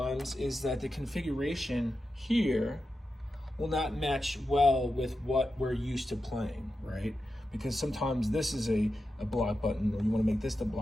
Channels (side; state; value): both; normal; correlation 0.90